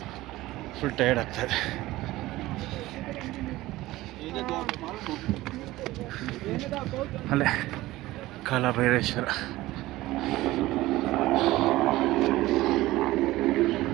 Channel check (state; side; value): quieter; left; 17.6 dB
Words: ಫುಲ್ ಟಯರ್ಡ್ ಆಗ್ತಾಯಿದೆ. ಅಲ್ಲೇ ಕಾಲಭೈರೇಶ್ವರ.